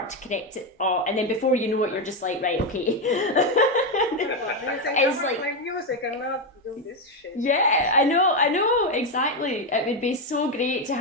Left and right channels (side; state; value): both; normal; correlation 0.07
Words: to connect it. Oh, and then before you know it, you're just like, right, okay. It's like play music and not do this shit. Yeah, I know, exactly. It would be so great to